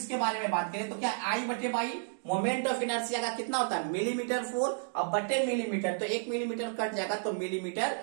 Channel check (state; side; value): silent; left; digital silence